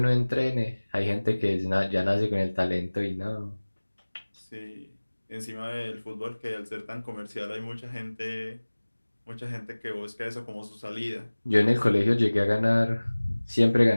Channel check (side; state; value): both; inverted; correlation -1.00